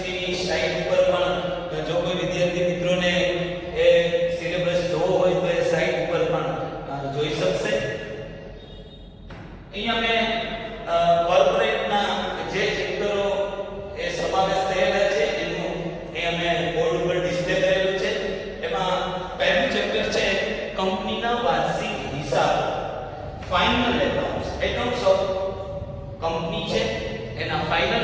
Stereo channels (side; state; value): both; identical; correlation 1.00